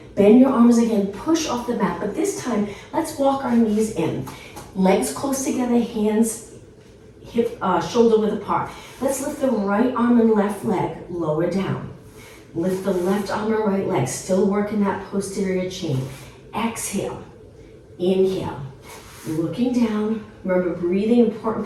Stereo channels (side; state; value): both; identical; correlation 1.00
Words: Bend your arms again. Push off the mat. But this time, let's walk our knees in. Legs close together. Hands hip, shoulder width apart. Let's lift the right arm and left leg. Lower down. Lift the left arm and right leg. Still working that posterior chain. Exhale. Inhale. Looking down. Remember, breathing,